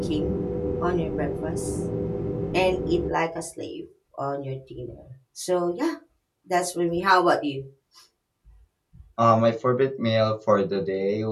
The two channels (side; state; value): both; identical; correlation 1.00